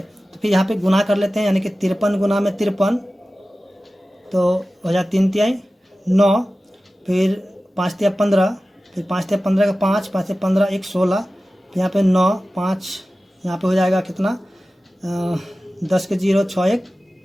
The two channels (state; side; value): normal; both; correlation 0.95